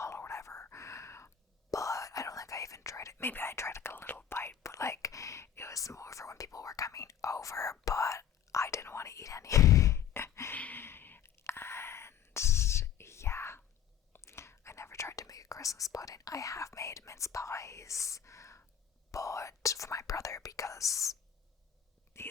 or whatever. But I don't think I even tried it. Maybe I tried like a little bite, but like it was more for when people were coming over, but I didn't want to eat any. And yeah, I never tried to make a Christmas pudding. I have made mince pies, but for my brother, because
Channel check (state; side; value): quieter; right; 9.2 dB